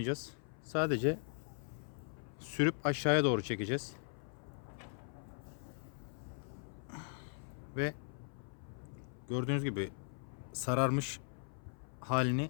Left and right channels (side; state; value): right; silent; 52 dB below the other